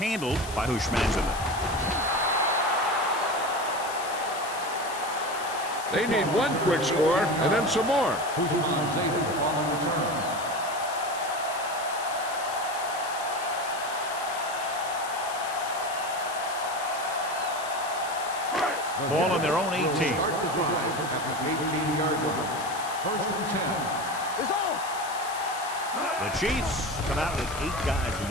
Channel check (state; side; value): noise; left; hiss, 12 dB below the sound